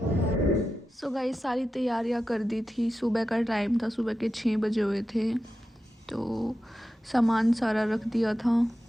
So guys सारी तैयारियां कर दी थी। सुबह का टाइम था, सुबह के 6 बजे हुए थे, तो सामान सारा रख दिया था।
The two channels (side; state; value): both; normal; correlation 0.91